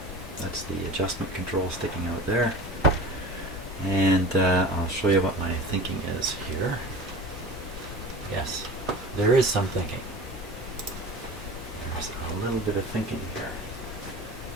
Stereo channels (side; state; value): both; normal; correlation 0.36